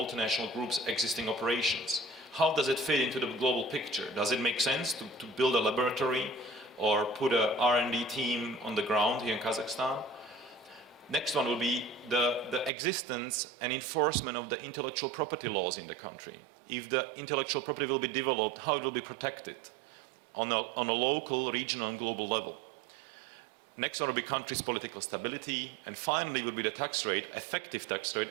group's existing operations. How does it fit into the global picture? Does it make sense to build a laboratory or put a R&D team on the ground here in Kazakhstan? Next one will be the existence and enforcement of the intellectual property laws in the country. If the intellectual property will be developed, how it will be protected on a local, regional and global level. Next one will be country's political stability, and finally will be the tax rate, effective tax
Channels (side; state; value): left; drops out; at 12.7 s